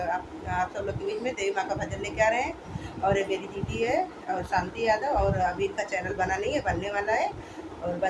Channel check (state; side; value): identical; both; correlation 1.00